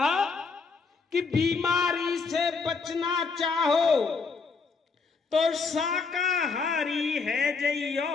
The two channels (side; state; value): right; quieter; 4.7 dB